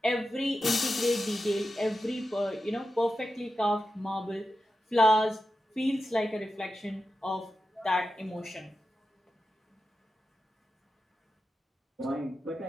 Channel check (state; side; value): normal; both; correlation 0.91